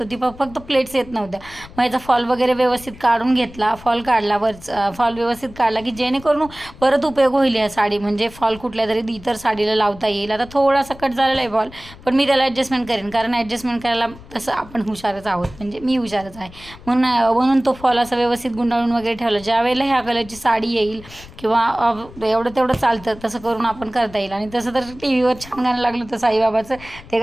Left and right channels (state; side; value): noise; left; rumble, 19 dB below the sound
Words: होती. फक्त प्लेट्स येत नव्हत्या. मग याचा फॉल वगैरे व्यवस्थित काढून घेतला, फॉल काढला, फॉल व्यवस्थित काढला की जेणेकरून परत उपयोग होईल या साडी. म्हणजे फॉल कुठल्या तरी इतर साडीला लावता येईल. आता थोडासा कट झालेला आहे फॉल, पण मी त्याला ॲडजस्टमेंट करेन, कारण ॲडजस्टमेंट करायला तसं आपण हुशारच आहोत, म्हणजे मी हुशारच आहे. म्हणून तो फॉल असा व्यवस्थित गुंडाळून वगैरे ठेवला. ज्या वेळेला ह्या कलरची साडी येईल किंवा एवढं तेवढं चालतं तसं करून आपण करता येईल. आणि तसं तर टी व्हीवर छान गाणं लागलं होतं साईबाबाचं, ते